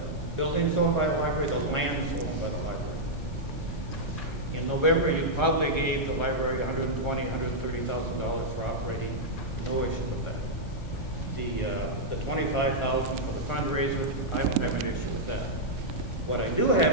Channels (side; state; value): left; noise; hiss, 26 dB below the sound